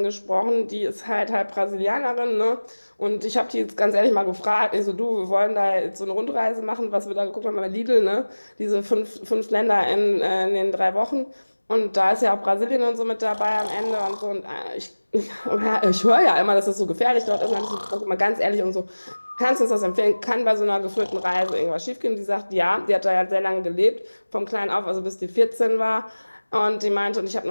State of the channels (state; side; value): inverted; both; correlation -1.00